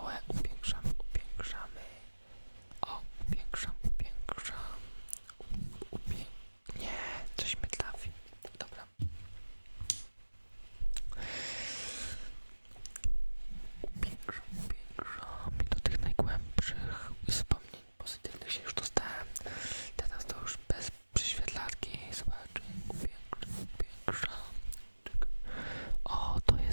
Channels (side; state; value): both; inverted; correlation -1.00